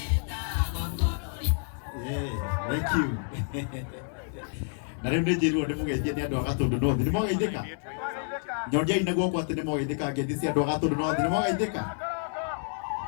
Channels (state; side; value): silent; right; digital silence